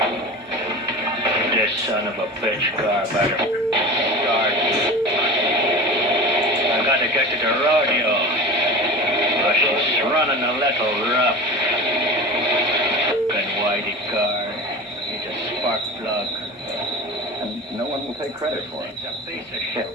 This son of a bitch car better start. I gotta get to the rodeo. Oh, she's running a little rough. Fucking whitey car. Needs a spark plug. And no one will take credit for it. It's a piece of shit.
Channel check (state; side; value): normal; both; correlation 0.32